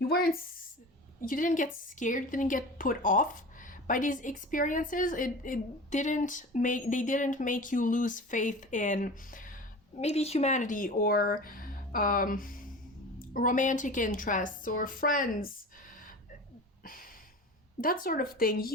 get scared, you didn't get put off by these experiences. They didn't make you lose faith in maybe humanity or romantic interests or friends, that sort of thing.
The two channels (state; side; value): normal; both; correlation 0.35